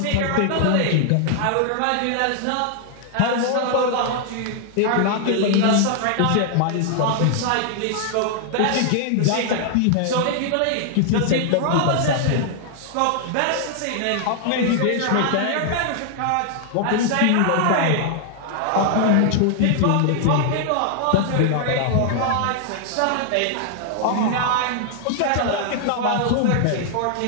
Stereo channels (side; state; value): both; different; correlation 0.00